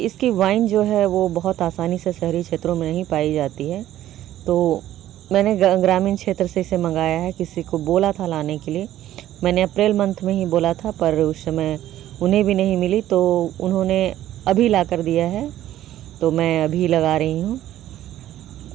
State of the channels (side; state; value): left; quieter; 13.1 dB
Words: वाइन जो है वो बहुत आसानी से शहरी क्षेत्रों में नहीं पाई जाती है। तो मैंने ग्रामीण क्षेत्र से इसे मंगाया है। किसी को बोला था लाने के लिए, मैंने अप्रैल मंथ में ही बोला था, पर उस समय उन्हें भी नहीं मिली, तो उन्होंने अभी ला कर दिया है, तो मैं अभी लगा रही हूँ।